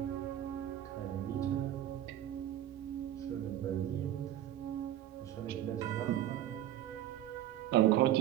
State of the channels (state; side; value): quieter; left; 12.2 dB